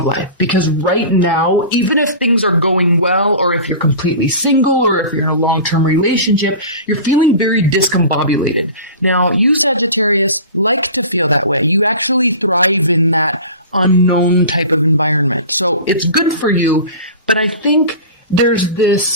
life. Because right now, even if things are going well, or if you're completely single, or if you're in a long-term relationship, you're feeling very discombobulated. Now, you Sagittarius like to feel that way. You actually thrive in that unknown type of environment. So it's good for you, but I think there's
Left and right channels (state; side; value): inverted; both; correlation -0.36